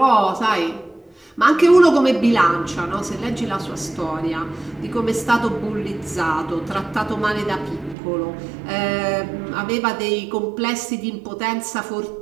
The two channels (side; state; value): left; drops out; at 8.0 s